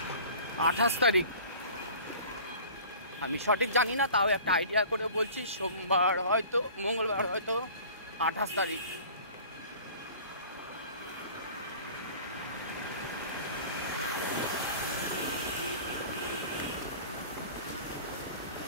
28 তারিখ, আমি সঠিক জানি না, তাও একটা আইডিয়া করে বলছি, সোমবার হয়তো মঙ্গলবার হয়তো 28 তারিখ।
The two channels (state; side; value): inverted; both; correlation -0.44